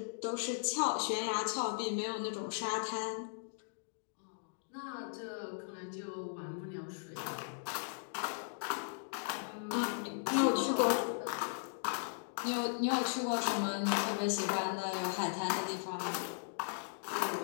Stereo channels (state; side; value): silent; right; digital silence